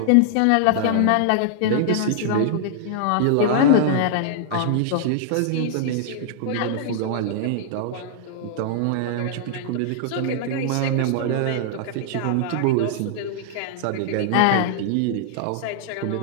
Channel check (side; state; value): both; different; correlation -0.01